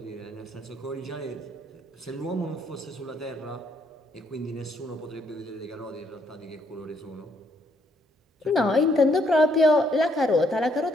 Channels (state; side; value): normal; both; correlation 0.70